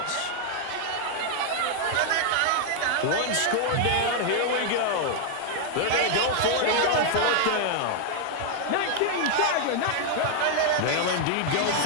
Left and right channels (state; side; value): different; both; correlation 0.00